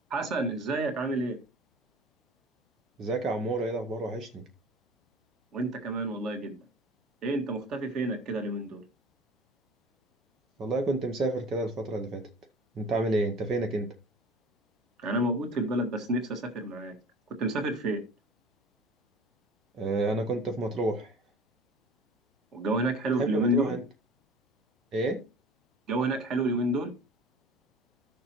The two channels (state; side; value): normal; both; correlation 0.42